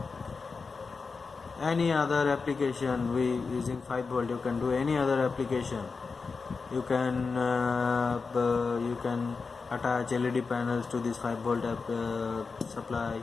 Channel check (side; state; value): right; quieter; 4.7 dB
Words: Any other application using 5 volt, you can do any other application. You can attach LED panels to this 5 volt supply.